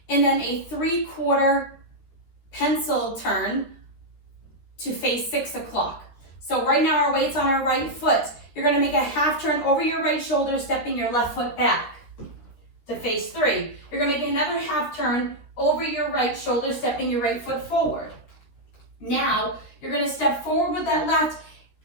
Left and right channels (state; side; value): late; right; 13 ms